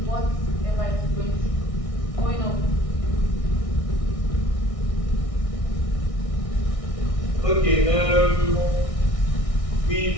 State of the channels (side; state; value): right; late; 1.6 ms